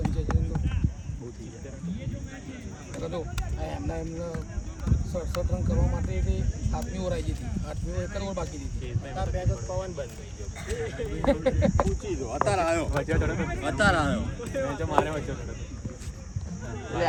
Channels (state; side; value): identical; both; correlation 1.00